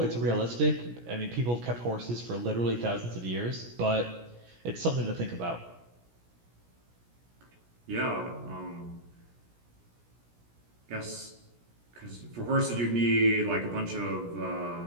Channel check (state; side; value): late; left; 17 ms